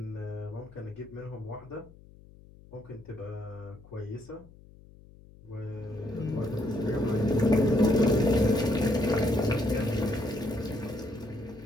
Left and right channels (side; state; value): left; noise; hum, 22 dB below the sound